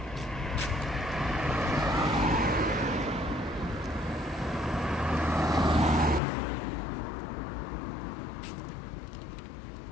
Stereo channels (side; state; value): right; drops out; at 6.2 s